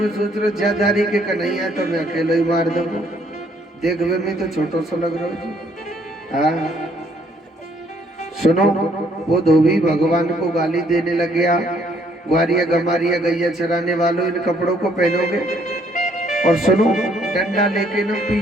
सोच रहे ज्यादारी के कन्हैया तो मैं अकेले ही मार दूंगा। देख वे मैं तो छोटो सा लग रहा हूँ। हाँ सुनो, वो धोबी भगवान को गाली देने लग गया। ग्वारिया गमारिया गैया चराने वालों इन कपड़ों को पहनोगे? और सुनो डंडा लेके ना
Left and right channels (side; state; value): both; normal; correlation 0.66